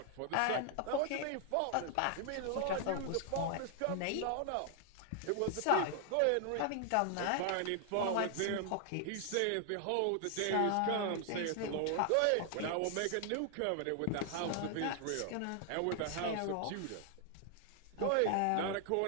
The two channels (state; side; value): different; both; correlation 0.00